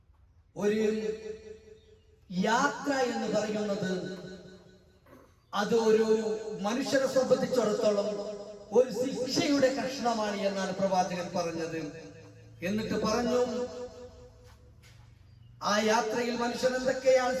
ഒരു യാത്ര എന്ന് പറയുന്നത് അത് ഒരു മനുഷ്യരെ സംബന്ധിച്ചിടത്തോളം ഒരു ശിക്ഷയുടെ കഷ്ണമാണ് എന്നാണ് പ്രവാചകൻ പറഞ്ഞത്. എന്നിട്ട് പറഞ്ഞു, ആ യാത്രയിൽ മനുഷ്യൻ എന്തൊക്കെയാണ്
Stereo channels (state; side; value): identical; both; correlation 1.00